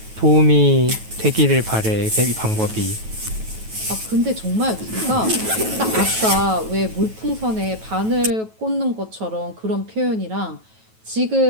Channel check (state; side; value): late; left; 9.2 ms